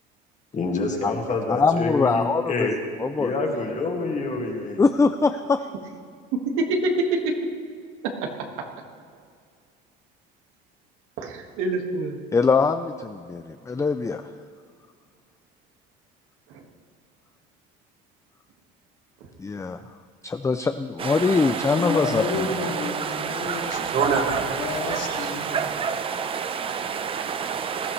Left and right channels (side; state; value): both; normal; correlation 0.56